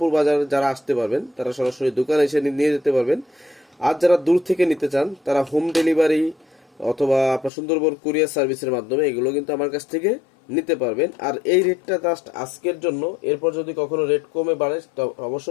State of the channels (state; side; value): drops out; right; at 7.5 s